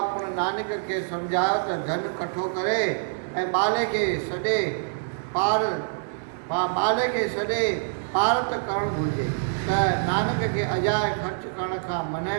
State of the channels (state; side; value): silent; left; digital silence